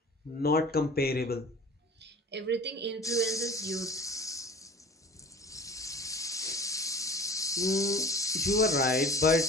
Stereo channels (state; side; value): normal; both; correlation 0.41